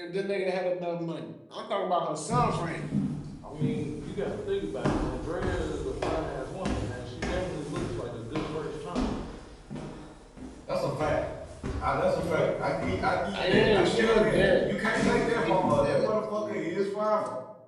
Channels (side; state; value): both; identical; correlation 1.00